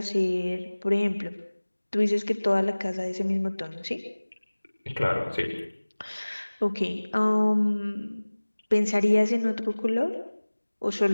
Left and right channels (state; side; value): inverted; both; correlation -1.00